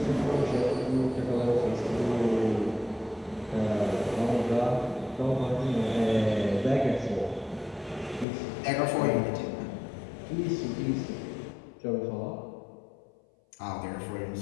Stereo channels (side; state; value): right; drops out; at 8.2 s